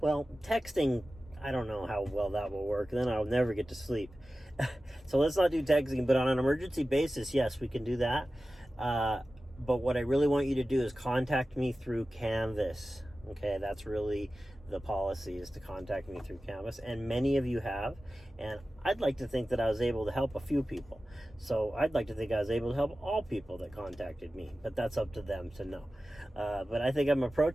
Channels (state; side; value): normal; both; correlation 0.95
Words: texting, I don't know how well that will work. Then I'll never get to sleep. So let's not do texting, but on an emergency basis, yes, we can do that. But what I really want you to do is contact me through Canvas. Okay, that's really the policy, is to contact me through Canvas. And many of you have. And I'd like to think that I was able to help a few people. So I'd like to think I was able to help all people that contacted me. But that's up to them to know. But I think I'm